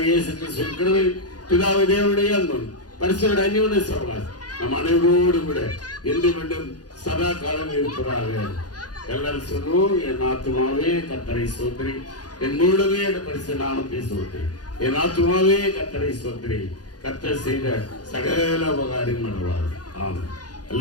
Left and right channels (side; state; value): right; late; 0.69 ms